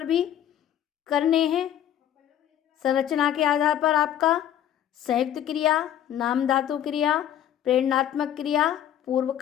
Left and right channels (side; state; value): right; quieter; 10.7 dB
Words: भी करने हैं। संरचना के आधार पर आपका संयुक्त क्रिया, नाम धातु क्रिया, प्रेरणात्मक क्रिया,